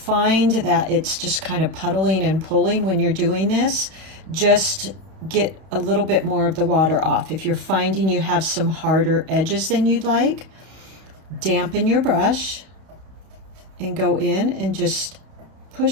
that it's just kind of puddling and pulling when you're doing this, just get a little bit more of the water off. If you're finding you have some harder edges than you'd like, dampen your brush and go in and just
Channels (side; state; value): left; late; 31 ms